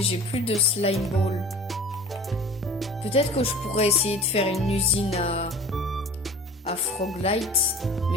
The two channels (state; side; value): normal; both; correlation 0.41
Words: j'ai plus de slime ball. Peut-être que je pourrais essayer de faire une usine à Froglight,